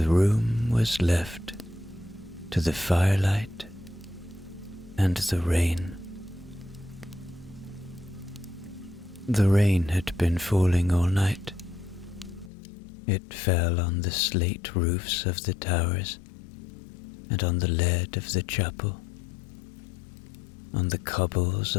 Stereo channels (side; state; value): right; drops out; at 12.5 s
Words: room was left to the firelight and the rain. The rain had been falling all night. It fell on the slate roofs of the towers, and on the lead of the chapel, on the cobbles